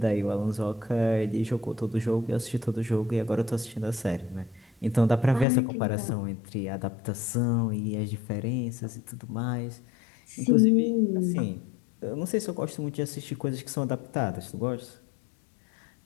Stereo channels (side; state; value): right; drops out; at 5.5 s